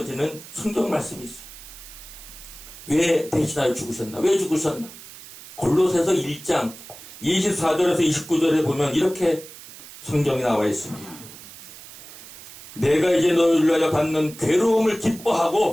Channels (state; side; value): noise; right; hiss, 16 dB below the sound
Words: 성경 말씀이 있어요. 왜 대신하여 죽으셨나? 왜 죽으셨나? 골로새서 1장 24절에서 29절에 보면 이렇게 성경이 나와 있습니다. 내가 이제 너희를 위하여 받는 괴로움을